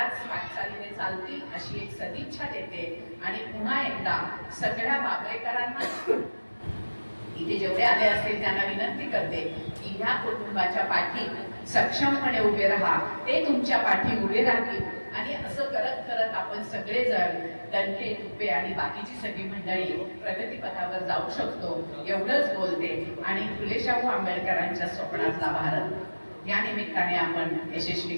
वाटचालीने चालतील अशी एक सदिच्छा देते. आणि पुन्हा एकदा सगळ्या बाबरेकरांना इथे जेवढे आले असतील त्यांना विनंती करते की ह्या कुटुंबाच्या पाठी सक्षमपणे उभे राहा, ते तुमच्या पाठी उभे राहतील. आणि असं करत करत आपण सगळेजण दणके, तुपे आणि बाकीची सगळी मंडळी प्रगतीपथावर जाऊ शकतो एवढंच बोलते. आणि फुले शाहू आंबेडकरांच्या स्वप्नातला भारत या निमित्ताने आपण यशस्वी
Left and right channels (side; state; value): both; inverted; correlation -1.00